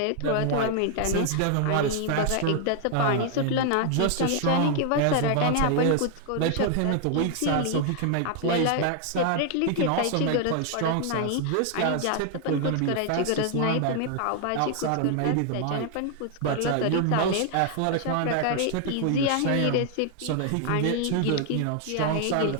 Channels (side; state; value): both; different; correlation 0.00